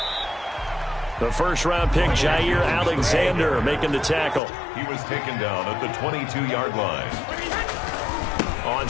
The first-round pick, Jair Alexander, making the tackle. He was taken down at the 22-yard line. On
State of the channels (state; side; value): drops out; right; at 4.4 s